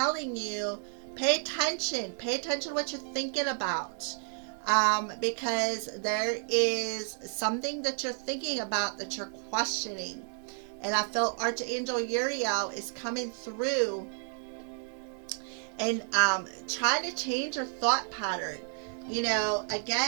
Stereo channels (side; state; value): left; silent; 57 dB below the other